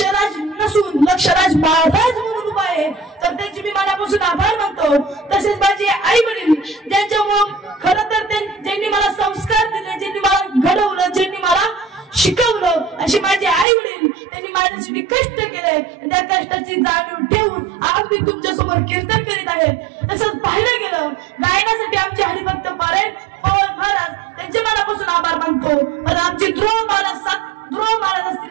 नसून लक्षराज महाराज म्हणून उभा आहे. तर त्यांची मी मनापासून आभार मानतो. तसेच माझे आई वडील ज्यांच्यामुळे खरं तर ज्यांनी मला संस्कार दिले, ज्यांनी मला घडवलं, ज्यांनी मला शिकवलं, असे माझे आई वडील, त्यांनी माझ्यासाठी कष्ट केले. त्या कष्टाची जाणीव ठेवून आज मी तुमच्या समोर कीर्तन करीत आहे. तसंच पाहिलं गेलं गायनासाठी आमचे हरिभक्त पारायण पवन महाराज त्यांचे मनापासून आभार मानतो. पण आमचे ध्रुव महाराज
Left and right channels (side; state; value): left; drops out; at 13.7 s